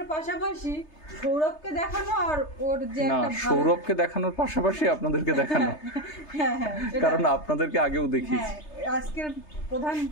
পাশাপাশি সৌরভকে দেখানো, আর ওর যে একটা সৌরভকে দেখানোর পাশাপাশি আপনাদেরকে দেখানো। হ্যাঁ, কারণ আপনাদেরকে আগেও দেখিয়েছি। আজকের প্রধান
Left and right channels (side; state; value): right; late; 3.3 ms